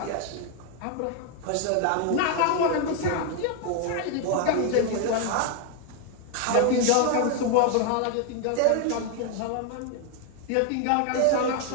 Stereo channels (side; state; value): both; different; correlation 0.01